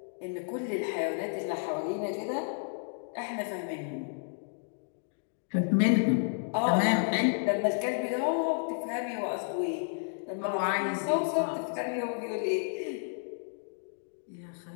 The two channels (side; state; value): right; silent; digital silence